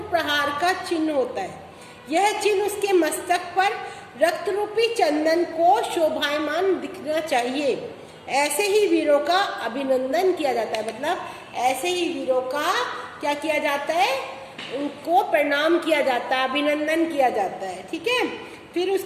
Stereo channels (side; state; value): both; identical; correlation 1.00